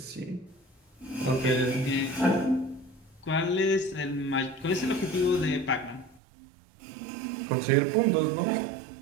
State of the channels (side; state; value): left; drops out; at 6.2 s